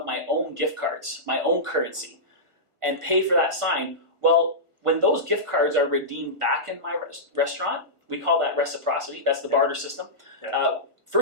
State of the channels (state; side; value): late; left; 1.5 ms